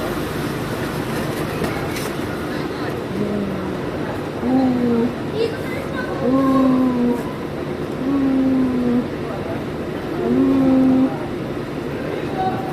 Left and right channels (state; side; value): identical; both; correlation 1.00